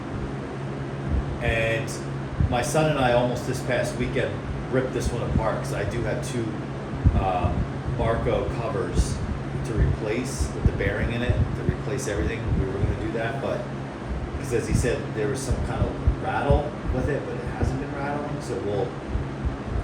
And my son and I almost this past weekend ripped this one apart because I do have two Barco covers to replace with the bearing in it, to replace everything. We were going to do that, but because as he said, there was some kind of rattle with it, but it hasn't been rattling, so we'll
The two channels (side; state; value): both; identical; correlation 1.00